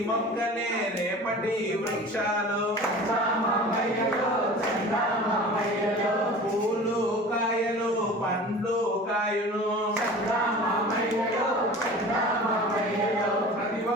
మొక్కలే రేపటి వృక్షాలు పూలు కాయలు పండ్లు కాయును ప్రతి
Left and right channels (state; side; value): normal; both; correlation 0.39